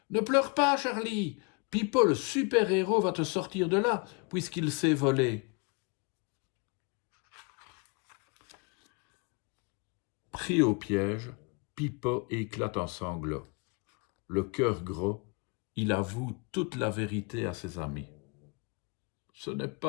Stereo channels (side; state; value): right; quieter; 32.0 dB